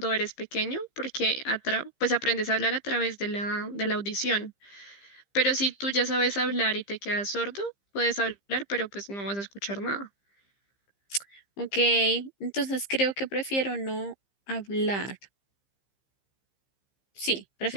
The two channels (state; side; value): late; right; 15 ms